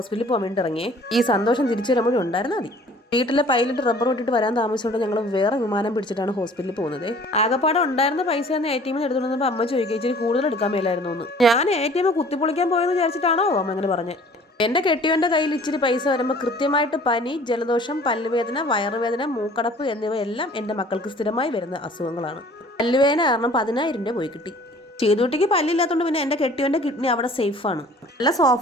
പോകാൻ വേണ്ടി ഇറങ്ങിയേ. ഈ സന്തോഷം തിരിച്ചു വരുമ്പോഴും ഉണ്ടായിരുന്നാൽ മതി. വീട്ടിലെ പൈലറ്റ് റബ്ബർ വിട്ടിട്ട് വരാൻ താമസിച്ചുകൊണ്ട് ഞങ്ങൾ വേറെ വിമാനം പിടിച്ചിട്ടാണ് ഹോസ്പിറ്റലിൽ പോകുന്നത്. ആകപ്പാടെ ഉണ്ടായിരുന്ന പൈസ ഒന്ന് ATM എടുത്തുകൊണ്ടപ്പോൾ അമ്മ ചോദിക്കുക ഇച്ചിരി കൂടുതൽ എടുക്കാൻ മേലായിരുന്നു എന്ന്. ഞാൻ ATM കുത്തിപ്പൊളിക്കാൻ പോയെന്ന് വിചാരിച്ചിട്ടാണോ അമ്മ അങ്ങനെ പറഞ്ഞത്. എൻ്റെ കെട്ടിയവൻ്റെ കയ്യിൽ ഇച്ചിരി പൈസ വരുമ്പോൾ കൃത്യമായിട്ട് പനി, ജലദോഷം, പല്ലുവേദന, വയറുവേദന, മൂക്കടപ്പ് എന്നിവയെല്ലാം എൻ്റെ മക്കൾക്ക് സ്ഥിരമായി വരുന്ന അസുഖങ്ങളാണ്. പല്ലുവേദന കാരണം 10,000 രൂപ പോയി കിട്ടി. ചെയ്തുകുട്ടിക്ക് പല്ലില്ലാത്തതുകൊണ്ട് പിന്നെ എൻ്റെ കെട്ടിയവൻ്റെ കിഡ്നി അവിടെ സേഫാണ്. നല്ല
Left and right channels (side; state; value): both; normal; correlation 0.51